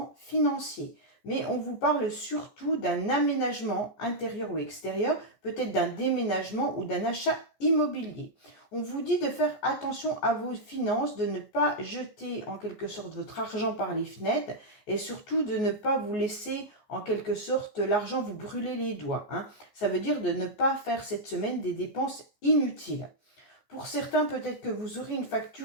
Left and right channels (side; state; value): right; late; 15 ms